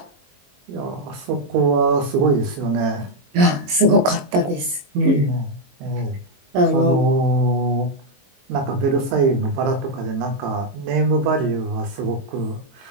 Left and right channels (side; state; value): left; late; 22 ms